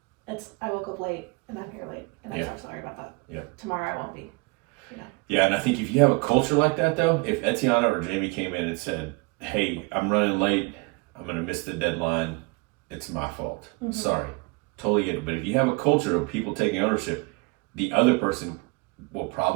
it's I woke up late and I'm here late and I'm so sorry about that. Yeah. Tomorrow I won't be. Yeah, and I think if you have a culture like that, though, if Etiana or Jamie came in and said, hey, I'm running late, I'm going to miss the deadline, it's my fault. Sorry. Totally get it. But if you have a culture of people taking ownership, the other person will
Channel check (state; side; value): quieter; left; 28.0 dB